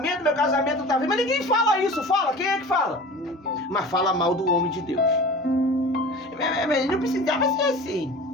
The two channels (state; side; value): normal; both; correlation 0.38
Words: tá vendo. Mas ninguém fala isso, fala? Quem é que fala? Mas fala mal do homem de Deus. Mas ele não precisava ser assim.